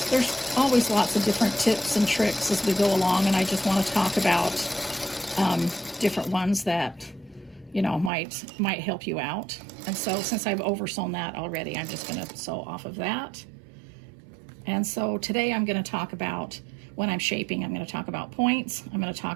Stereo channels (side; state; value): left; drops out; at 8.1 s